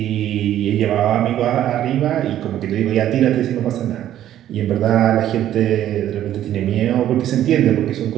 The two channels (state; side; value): quieter; left; 11.9 dB